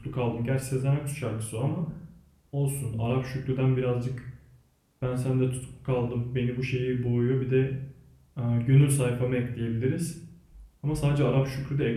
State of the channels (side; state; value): both; identical; correlation 1.00